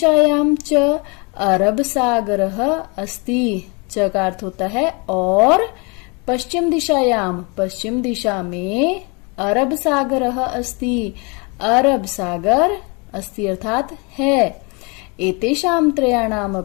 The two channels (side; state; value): right; quieter; 30.8 dB